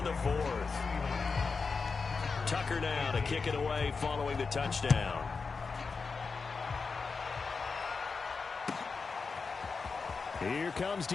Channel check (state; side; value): quieter; right; 4.7 dB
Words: the 4th. Tucker now to kick it away following the touchdown. Here comes